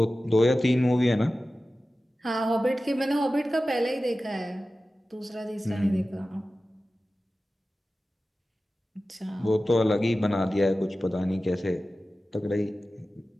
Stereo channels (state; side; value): normal; both; correlation 0.95